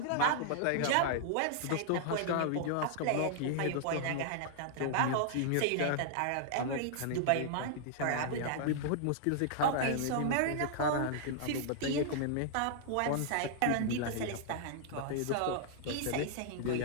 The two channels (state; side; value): different; both; correlation -0.01